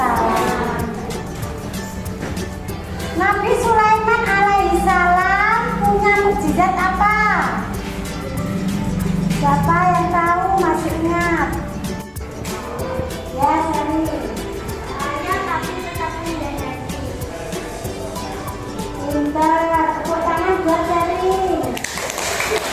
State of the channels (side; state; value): both; identical; correlation 1.00